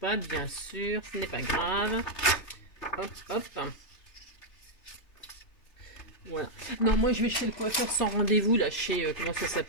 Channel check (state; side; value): late; right; 3.3 ms